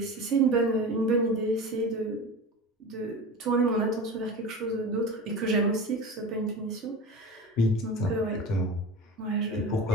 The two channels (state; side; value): normal; both; correlation 0.31